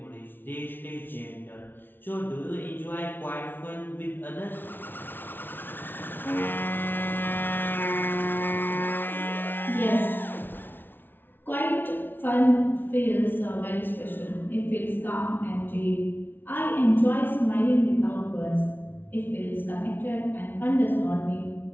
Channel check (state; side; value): late; right; 0.098 ms